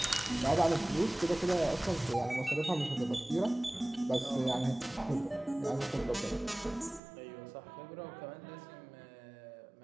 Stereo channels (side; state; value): left; drops out; at 7.0 s